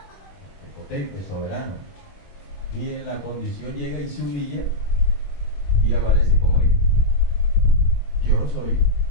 el potente, soberano. Y en la condición llega y se humilla y aparece como hijo. Yo soy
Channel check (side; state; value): right; late; 21 ms